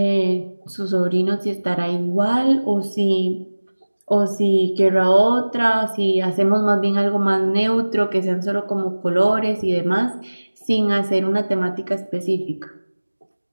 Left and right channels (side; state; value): both; inverted; correlation -1.00